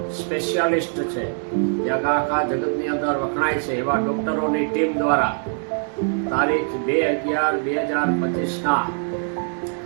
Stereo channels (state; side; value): silent; left; 56 dB below the other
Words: સ્પેશિયાલિસ્ટ છે જે આખા જગતની અંદર વખણાય છે એવા ડૉક્ટરોની ટીમ દ્વારા તારીખ 2/11/2025ના